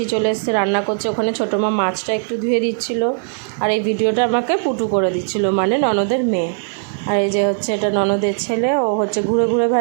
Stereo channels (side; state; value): left; silent; 67 dB below the other